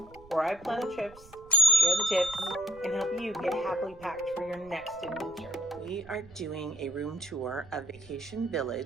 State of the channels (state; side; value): noise; right; rumble, 22 dB below the sound